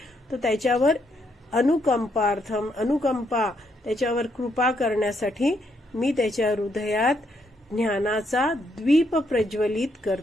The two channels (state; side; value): normal; both; correlation 0.75